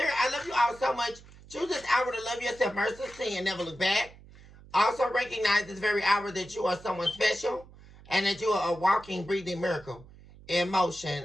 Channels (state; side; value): noise; right; hum, 21 dB below the sound